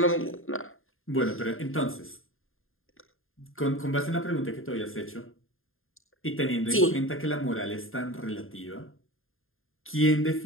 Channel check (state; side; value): late; right; 0.60 ms